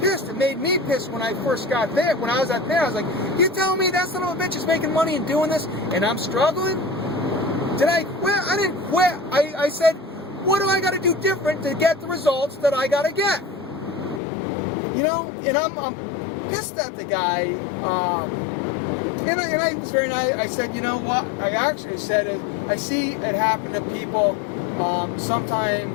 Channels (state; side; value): drops out; right; at 14.2 s